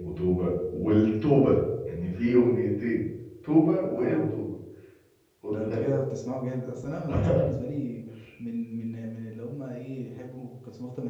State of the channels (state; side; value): identical; both; correlation 1.00